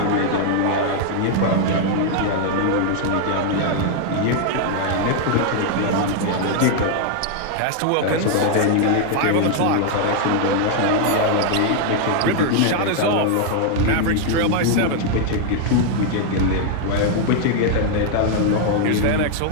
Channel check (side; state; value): both; different; correlation 0.00